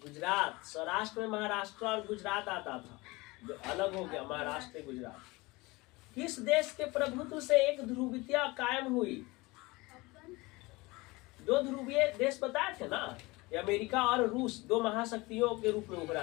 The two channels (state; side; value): quieter; right; 23.0 dB